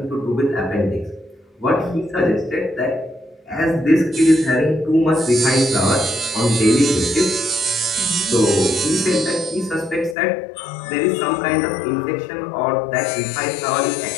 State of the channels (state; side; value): drops out; right; at 10.2 s